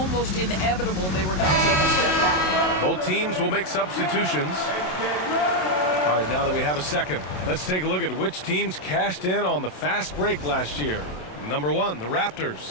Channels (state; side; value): late; right; 27 ms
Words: inevitable they were going to take a step back. Both teams will make substitutions. All right, now that we have a second, let's take a look at which teams cashed in on the fast break last year. Number 1, the